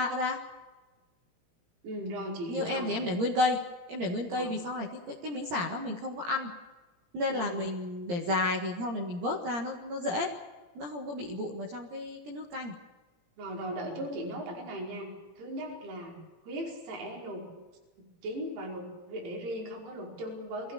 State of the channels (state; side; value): late; left; 17 ms